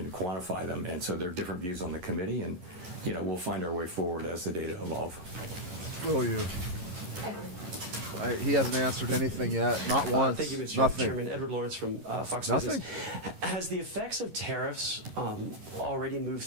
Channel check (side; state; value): left; late; 11 ms